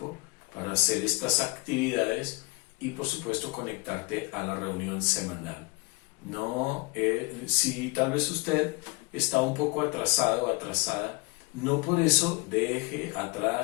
para hacer estas actividades y por supuesto conectarte a la reunión semanal. No, si tal vez usted está un poco atrasado o atrasada, no por eso deje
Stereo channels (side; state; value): right; quieter; 26.5 dB